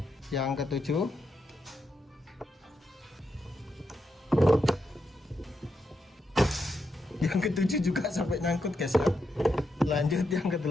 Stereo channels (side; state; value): both; normal; correlation 0.83